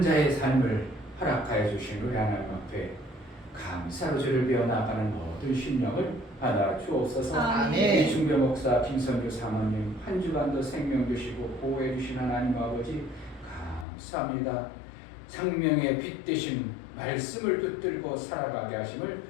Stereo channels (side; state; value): right; drops out; at 13.9 s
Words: 자의 삶을 허락하여 주신 우리 하나님 앞에 감사로 주를 배워나가는 모든 심령을 받아 주옵소서. 아멘. 이 중배 목사 김선주 사모님 한 주간도 생명 주시고 보호해 주신 하나님 아버지 감사합니다. 생명의 빛 되신 말씀을 붙들고 살아가게 하심을